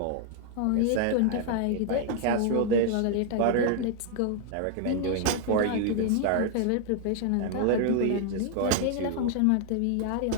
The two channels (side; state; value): both; different; correlation 0.00